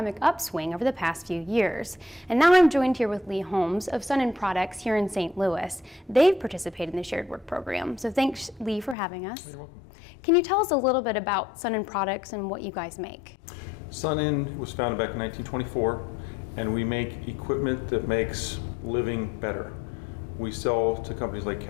upswing over the past few years. And now I'm joined here with Lee Holmes of Sun & Products here in St. Louis. They've participated in the shared work program. So thanks, Lee, for having us. You're welcome. Can you tell us a little bit about Sun & Products and what you guys make? Sun & was founded back in 1924, and we make equipment that makes living better. We sell to companies like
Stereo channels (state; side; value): drops out; right; at 9.0 s